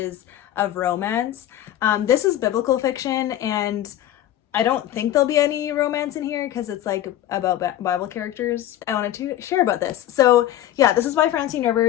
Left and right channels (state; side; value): quieter; right; 12.5 dB